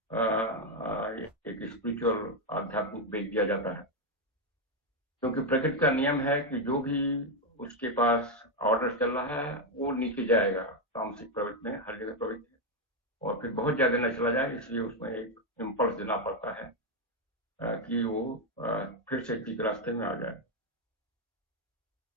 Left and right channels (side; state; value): both; normal; correlation 0.04